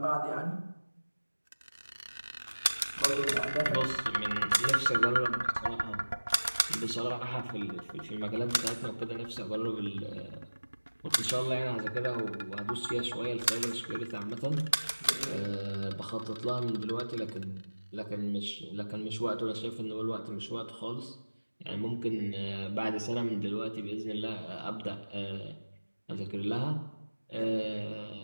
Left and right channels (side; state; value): both; inverted; correlation -1.00